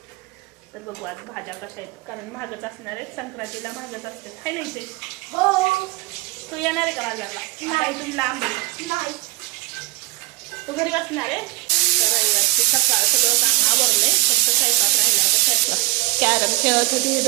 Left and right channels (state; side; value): quieter; left; 23.0 dB